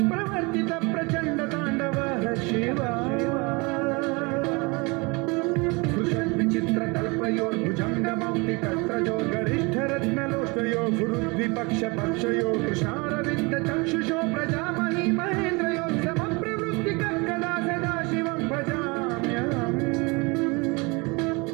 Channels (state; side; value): quieter; left; 27.7 dB